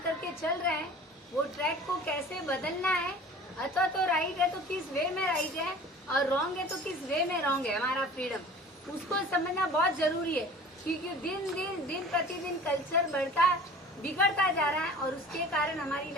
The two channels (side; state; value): both; normal; correlation 0.43